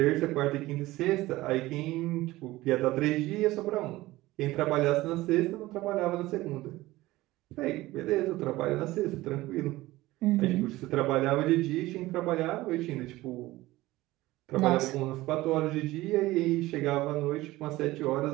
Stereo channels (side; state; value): left; quieter; 18.0 dB